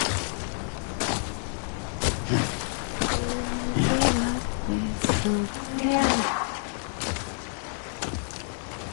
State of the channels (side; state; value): right; silent; 59 dB below the other